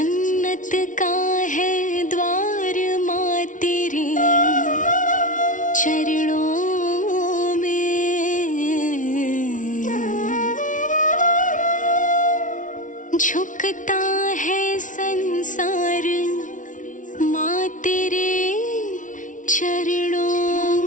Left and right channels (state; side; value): late; right; 0.37 ms